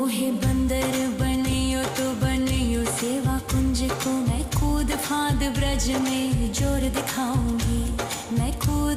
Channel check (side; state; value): both; identical; correlation 1.00